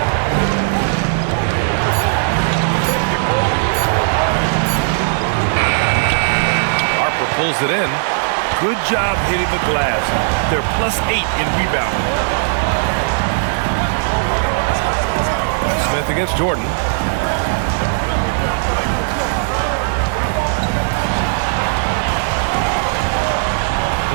Harper pulls it in. Good job hitting the glass. They're +8 in rebounding. Smith against Jordan.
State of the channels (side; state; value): left; silent; 56 dB below the other